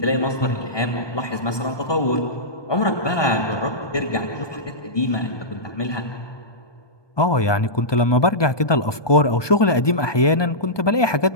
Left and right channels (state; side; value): late; right; 1.2 ms